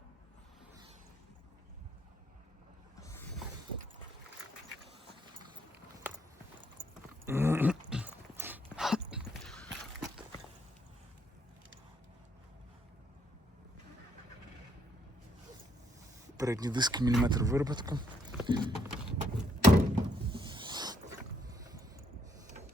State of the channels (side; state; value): both; normal; correlation 0.72